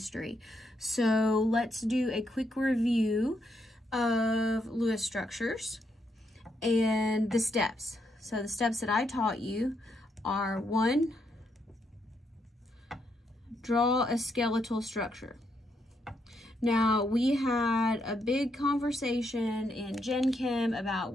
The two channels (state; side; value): normal; both; correlation 0.78